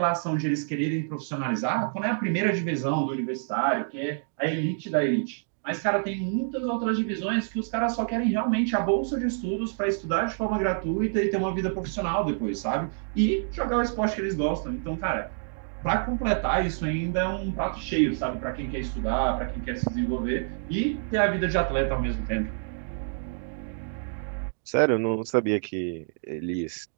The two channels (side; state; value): left; silent; digital silence